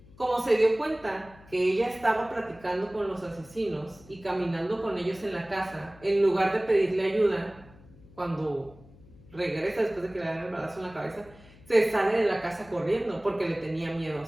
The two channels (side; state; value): left; noise; hum, 23 dB below the sound